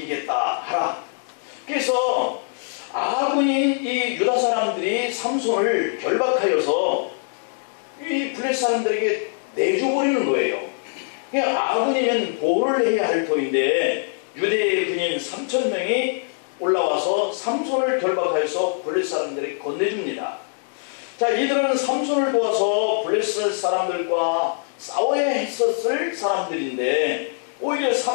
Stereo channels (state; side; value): silent; right; 63 dB below the other